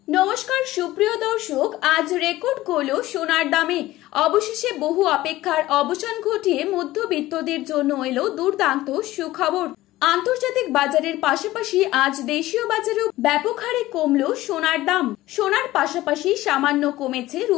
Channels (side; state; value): right; quieter; 16.6 dB